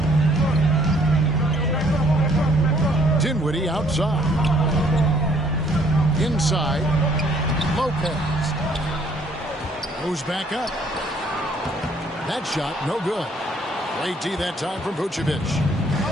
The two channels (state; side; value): normal; both; correlation 0.62